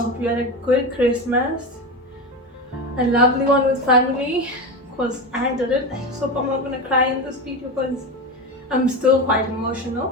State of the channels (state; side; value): normal; both; correlation 0.21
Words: you had a good Christmas, a lovely one with family. Cause I did it. So I'm not gonna cry in this video because I'm still quite emotional.